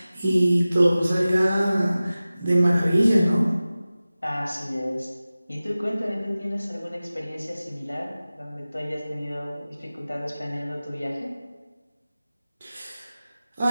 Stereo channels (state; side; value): inverted; both; correlation -0.97